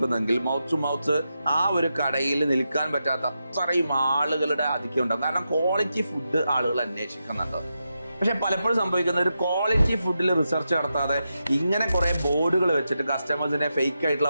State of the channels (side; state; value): both; inverted; correlation -0.87